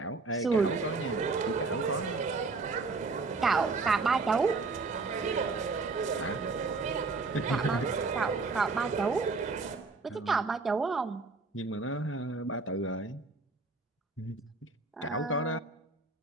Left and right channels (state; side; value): quieter; left; 3.9 dB